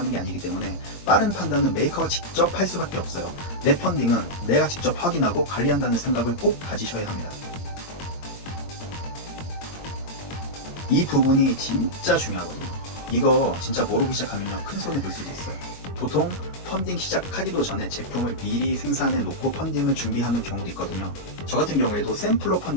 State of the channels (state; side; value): late; right; 22 ms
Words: 게 아니기 때문에 빠른 판단은 메이커가 직접 할 수밖에 없어요. 내 펀딩은 내가 직접 확인하고 관리한다는 생각을 꼭 가지셔야 합니다. 이 부분이 진짜 중요하거든요. 이거 진짜 모르기 시작하면 큰 손해 볼 수도 있어요. 보통 펀딩 시작하기도 전에 제품을 미리 생산해 놓고 펀딩을 준비하는 경우도 있거든요. 저 같은 경우에도 샘플로